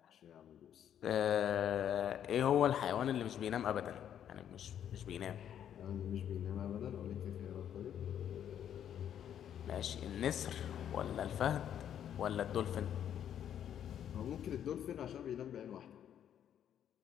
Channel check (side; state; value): right; quieter; 9.7 dB